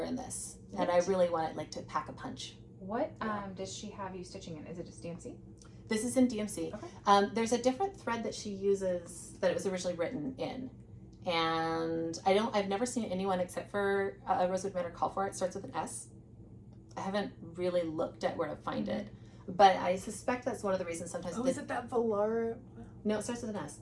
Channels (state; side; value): identical; both; correlation 1.00